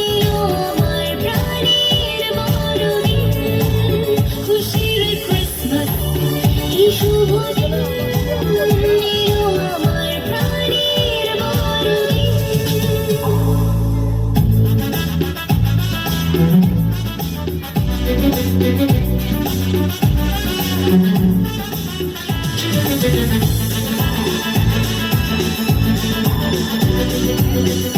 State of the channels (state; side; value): identical; both; correlation 1.00